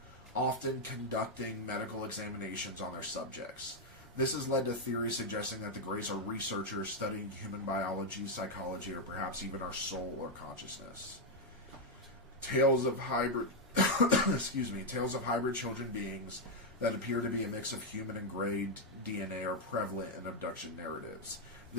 often conducting medical examinations on their subjects. This has led to theories suggesting that the Greys are researchers studying human biology, psychology, or perhaps even our soul or consciousness. Tales of hybrid tales of hybrid children beings that appear to be a mix of human and Grey DNA are prevalent in abduction narratives.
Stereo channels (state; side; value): normal; both; correlation 0.01